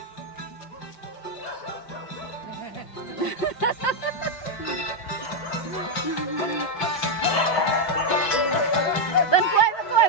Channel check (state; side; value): late; right; 5.6 ms